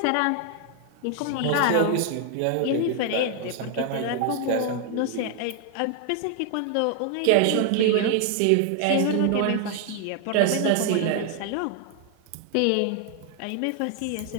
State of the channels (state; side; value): different; both; correlation 0.00